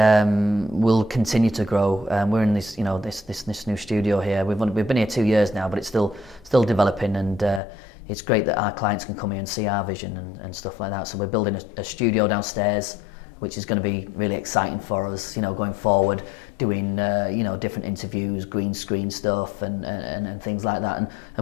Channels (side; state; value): right; drops out; at 7.6 s